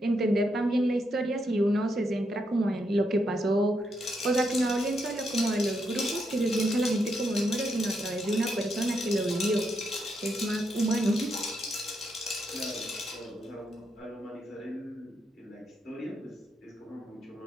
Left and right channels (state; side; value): normal; both; correlation 0.80